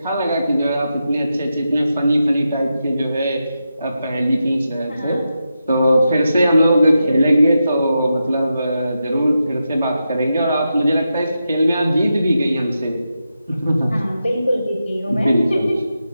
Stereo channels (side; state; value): both; inverted; correlation -0.88